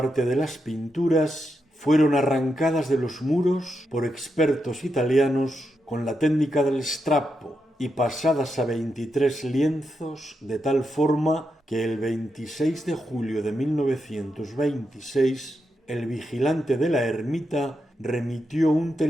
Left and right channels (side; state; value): both; normal; correlation 0.85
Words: de las pinturas fueron arrancadas de los muros por expertos italianos con la técnica del strappo y pasadas a 23 lienzos de tal forma que el 26 de julio de 1926 el vigilante de la ermita remitió un